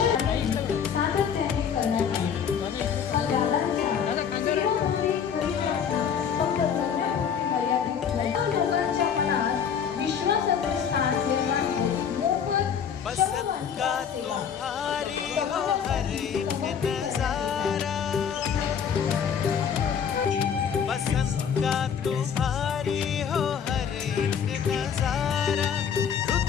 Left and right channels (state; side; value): quieter; right; 7.6 dB